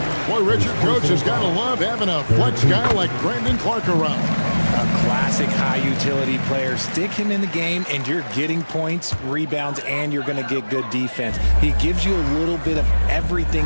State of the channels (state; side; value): inverted; both; correlation -1.00